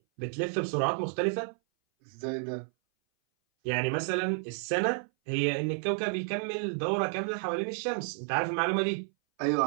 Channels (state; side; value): silent; left; 57 dB below the other